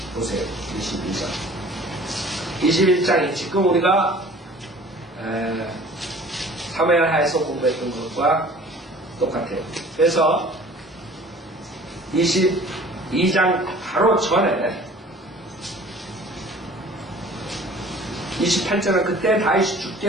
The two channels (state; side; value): normal; both; correlation 0.48